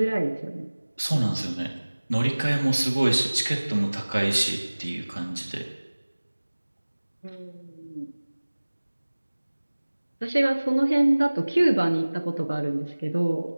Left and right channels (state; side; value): inverted; both; correlation -1.00